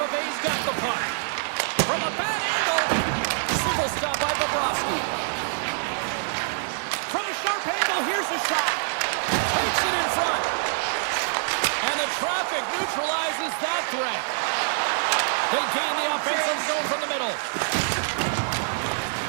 Bay's got the puck. From a bad angle. Single stop by Bobrovsky. From a sharp angle, here's a shot. Takes it in front. And the traffic neutralizes that threat. They gain the offensive zone from the middle.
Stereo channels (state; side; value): silent; left; digital silence